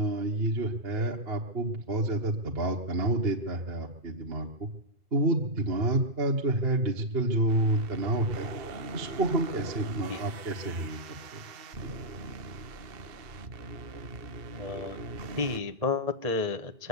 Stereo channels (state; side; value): late; left; 2.7 ms